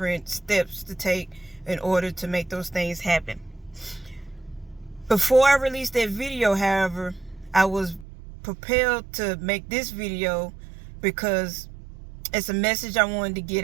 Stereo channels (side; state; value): left; drops out; at 8.1 s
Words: steps to take in order to make those things happen. Before I released that video, however, I was propelled to make this video because it's a message I wanted to get